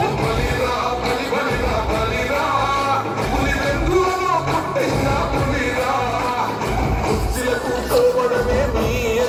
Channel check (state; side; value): identical; both; correlation 1.00